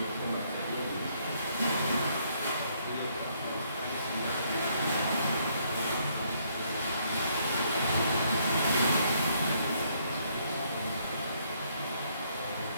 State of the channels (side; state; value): both; inverted; correlation -0.70